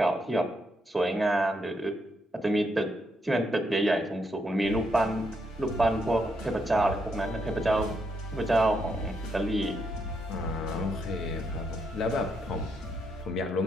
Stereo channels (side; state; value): both; normal; correlation 0.78